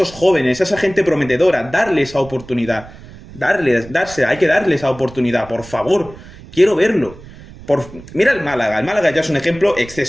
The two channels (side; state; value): right; noise; rumble, 18 dB below the sound